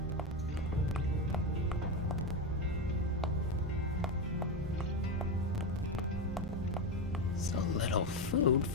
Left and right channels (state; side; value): normal; both; correlation 0.13